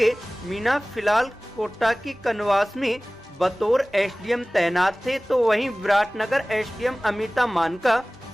मीणा फिलहाल कोटा की कनवास में बतौर एसडीएम तैनात थे, तो वहीं विराटनगर एसडीएम अमिता मान का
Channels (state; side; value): noise; left; rumble, 30 dB below the sound